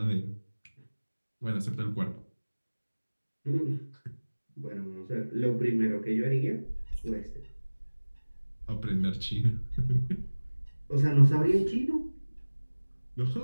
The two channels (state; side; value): inverted; both; correlation -1.00